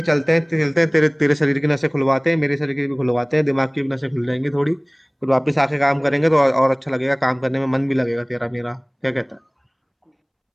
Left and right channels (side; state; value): both; identical; correlation 1.00